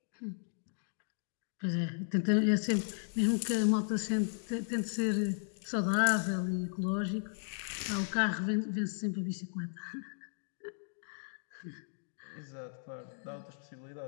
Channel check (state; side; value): silent; right; digital silence